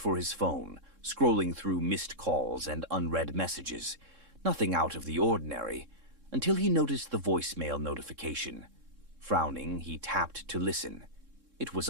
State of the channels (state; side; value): late; left; 3.7 ms